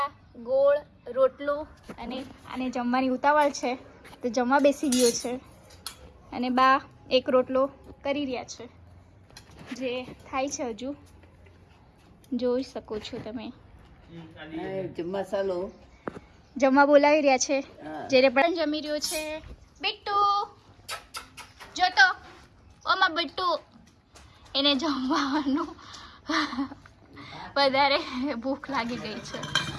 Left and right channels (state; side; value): identical; both; correlation 1.00